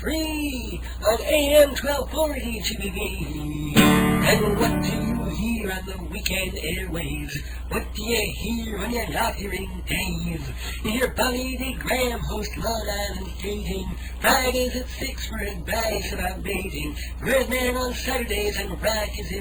on AM 1240 GBB? And what do you hear on the weekend airwaves? What do you hear when you're not hearing Dave? You hear Bonnie D. Graham host Long Island's Dating, Fridays at 6 for advice about mating. Redman on Saturdays and rock is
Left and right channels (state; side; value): identical; both; correlation 1.00